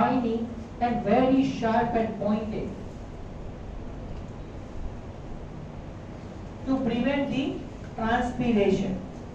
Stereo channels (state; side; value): identical; both; correlation 1.00